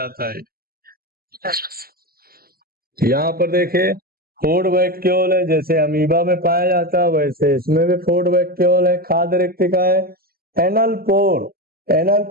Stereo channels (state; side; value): late; left; 0.43 ms